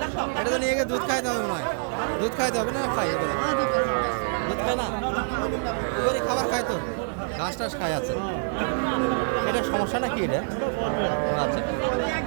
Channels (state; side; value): silent; left; digital silence